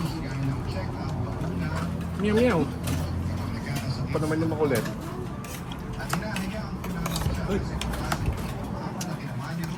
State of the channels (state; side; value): identical; both; correlation 1.00